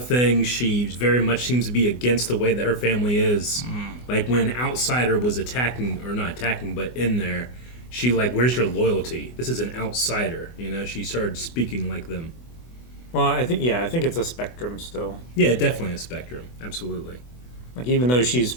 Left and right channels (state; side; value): late; right; 24 ms